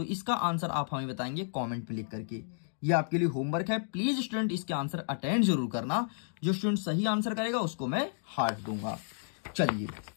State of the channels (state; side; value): silent; right; digital silence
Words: इसका आंसर आप हमें बताएंगे कमेंट पे लिख करके। ये आपके लिए होमवर्क है, प्लीज स्टूडेंट इसके आंसर अटेंड जरूर करना। जो स्टूडेंट सही आंसर करेगा उसको मैं हार्ट दूंगा। चलिए